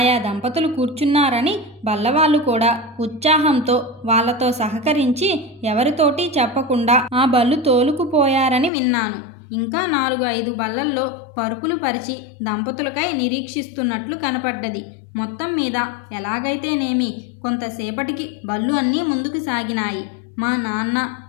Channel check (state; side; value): drops out; right; at 8.7 s